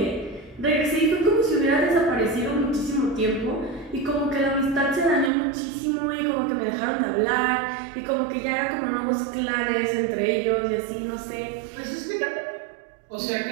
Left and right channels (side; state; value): left; drops out; at 5.3 s